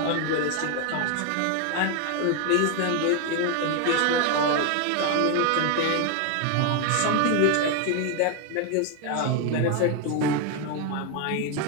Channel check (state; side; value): different; both; correlation 0.01